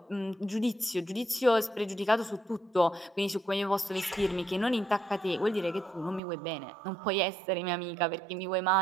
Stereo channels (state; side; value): drops out; left; at 6.2 s